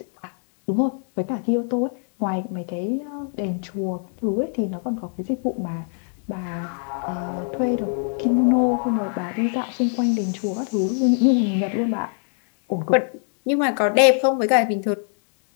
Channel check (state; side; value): silent; right; 57 dB below the other